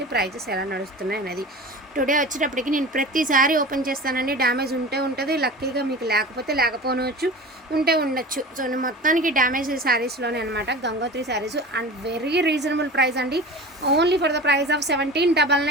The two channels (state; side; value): normal; both; correlation 0.35